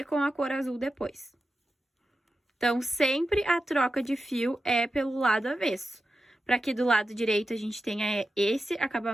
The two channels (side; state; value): both; normal; correlation 0.92